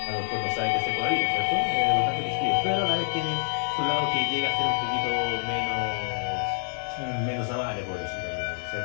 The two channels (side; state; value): right; silent; 60 dB below the other